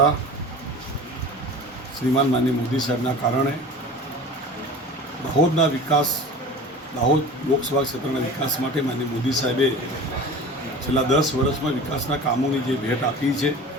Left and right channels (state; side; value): normal; both; correlation 0.38